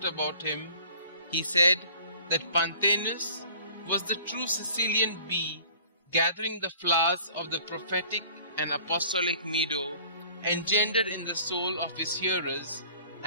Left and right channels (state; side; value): inverted; both; correlation -0.51